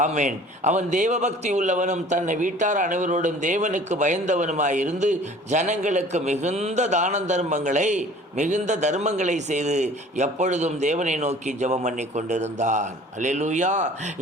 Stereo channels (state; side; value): normal; both; correlation 0.48